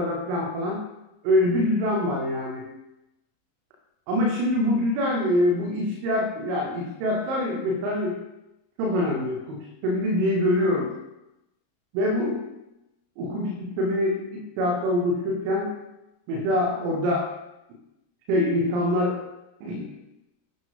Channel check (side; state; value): left; late; 34 ms